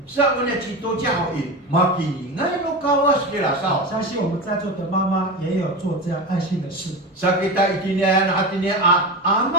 Sa mana cito jauh makini ngai no kawas kira sao. 相信我们在座的妈妈也有做这样爱心的事。 Sa kita itinian hatinya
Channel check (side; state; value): both; normal; correlation 0.23